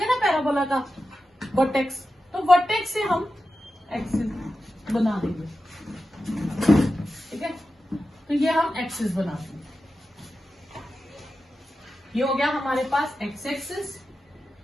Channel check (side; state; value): both; normal; correlation 0.92